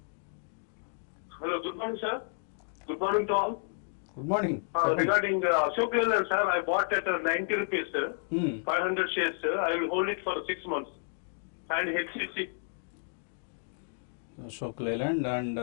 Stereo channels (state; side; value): silent; right; digital silence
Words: Hello, good morning sir. Good morning to all. Good morning. Regarding Ashok Leyland, sir, I bought at 90 rupees, sir. 500 shares, sir. I will hold it for 6 months. And HCC. Ashok Leyland and